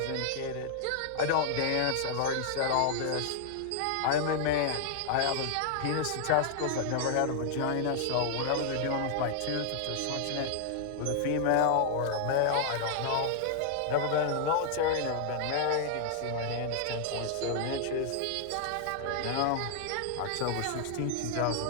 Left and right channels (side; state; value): both; different; correlation 0.00